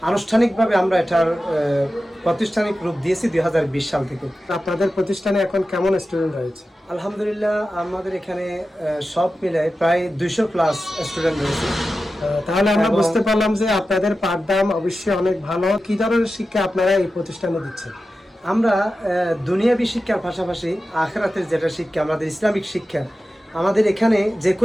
আনুষ্ঠানিকভাবে আমরা এটার প্রাতিষ্ঠানিক রূপ দিয়েছি 2020 সাল থেকে। আপনাদের প্রতিষ্ঠানে এখন কেমন স্টুডেন্ট রয়েছে? আলহামদুলিল্লাহ, আমাদের এখানে সব মিলে প্রায় 200 প্লাস স্টুডেন্ট রয়েছে। তাহলে আমরা বুঝতে পারলাম যে আপনাদের পাঠদান অবশ্যই অনেক ভালো। কি ধরনের শিক্ষা আপনারা এই প্রতিষ্ঠানে দিচ্ছেন? আমরা দুনিয়াবী শিক্ষার পাশাপাশি আখিরাতের যেটা শিক্ষা, আমাদের ইসলামিক শিক্ষা, আমাদের এখানে যে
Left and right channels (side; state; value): both; normal; correlation 0.93